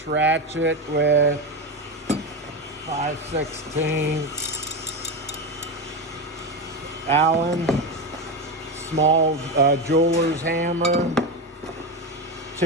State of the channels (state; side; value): normal; both; correlation 0.16